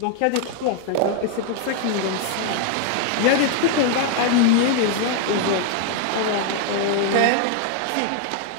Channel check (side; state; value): both; different; correlation 0.00